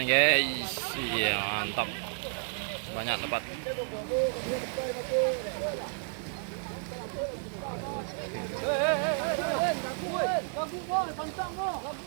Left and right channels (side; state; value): left; silent; 56 dB below the other